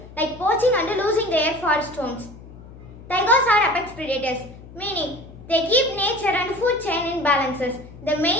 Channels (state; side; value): noise; left; hum, 18 dB below the sound